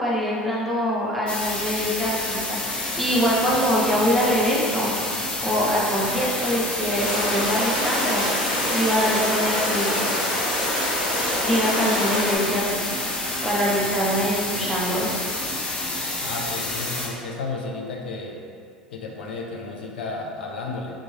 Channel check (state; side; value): normal; both; correlation 0.41